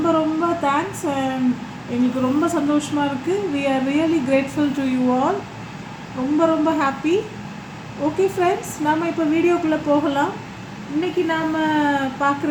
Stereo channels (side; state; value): both; identical; correlation 1.00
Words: ரொம்ப தேங்க்ஸ். அண்ட் எங்களுக்கு ரொம்ப சந்தோஷமாக இருக்குது. We are really grateful to you all. ரொம்ப ரொம்ப ஹாப்பி. ஓகே ஃப்ரெண்ட்ஸ், நாம் இப்போ வீடியோக்குள்ளே போகலாம். இன்றைக்கி நாம்